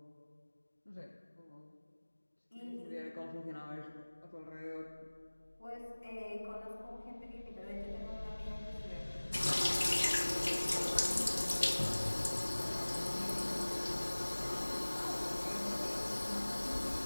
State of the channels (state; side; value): inverted; both; correlation -1.00